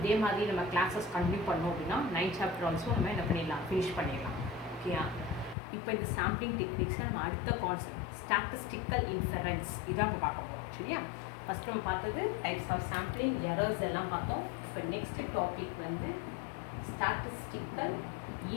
மாதிரி நம்ம கிளாஸஸ் கண்டினியூ பண்ணோம் அப்படின்னா 9 சாப்டர் ஆல்சோ நம்ம என்ன பண்ணிடலாம், ஃபினிஷ் பண்ணிடலாம். ஓகேயா, இப்போ இந்த சாம்பிளிங் டெக்னிக்ஸை நம்ம அடுத்த கான்செப்ட் ஸ்டாட்டிஸ்டிக்கல் இன்ஃபரன்ஸ் இதான் நம்ம பார்க்க போகிறோம். சரியா, ஃபஸ்ட் நம்ம பார்த்தது டைப்ஸ் ஆஃப் சாம்பிளிங், எரர்ஸ் எல்லாம் பார்த்தோம். இப்போ நெக்ஸ்ட் டாபிக் வந்து ஸ்டாட்டிஸ்டிக்கல்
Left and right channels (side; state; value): right; drops out; at 5.6 s